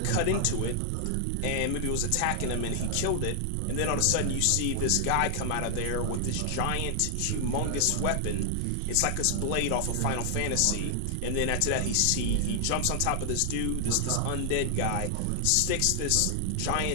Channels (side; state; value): both; different; correlation 0.00